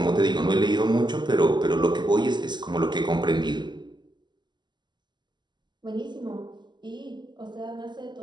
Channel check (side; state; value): left; late; 0.21 ms